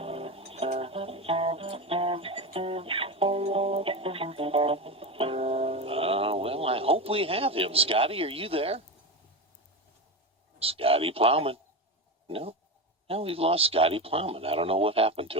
Well, I hope we have him. Scotty, are you there? Scotty Plowman. No, we've lost Scotty Plowman. I don't know what happened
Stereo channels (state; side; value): normal; both; correlation 0.18